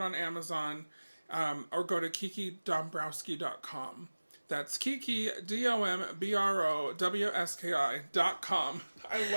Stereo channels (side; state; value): both; inverted; correlation -1.00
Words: on Amazon. Or go to kikidombrowski.com. That's Kiki, DOMBROWSKI.com. I